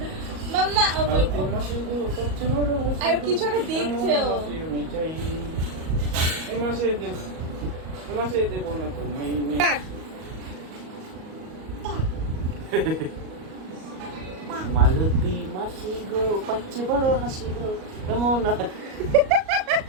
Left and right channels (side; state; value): left; late; 38 ms